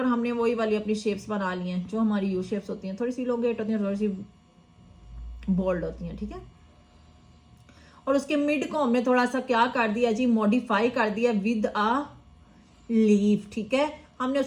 हमने वही वाली अपनी शेप्स बना ली हैं जो हमारी यू शेप्स होती हैं, थोड़ी सी इलोंगेट होती हैं, थोड़ी सी बोल्ड होती हैं, ठीक है। और उसके मिड को हमने थोड़ा सा क्या कर दिया जी, मॉडिफाई कर दिया विद अ लीफ, ठीक है। हमने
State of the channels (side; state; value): both; identical; correlation 1.00